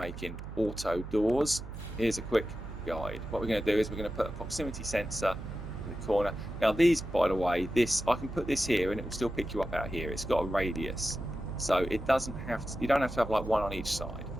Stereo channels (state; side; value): noise; right; hum, 10 dB below the sound